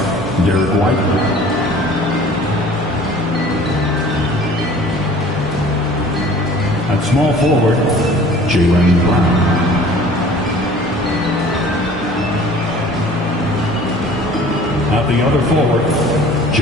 Derek White. At small forward, Jaylen Brown. At the other forward,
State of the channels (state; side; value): normal; both; correlation 0.48